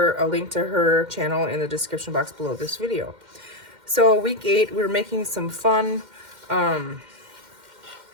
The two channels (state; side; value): late; left; 2.1 ms